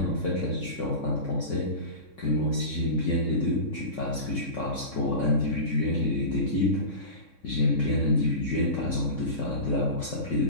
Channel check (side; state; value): right; late; 3.6 ms